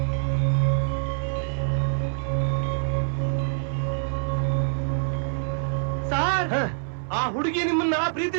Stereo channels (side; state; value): left; silent; 61 dB below the other